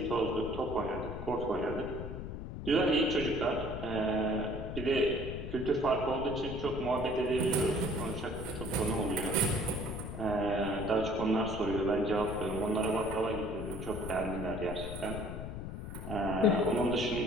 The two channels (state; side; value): noise; left; rumble, 7 dB below the sound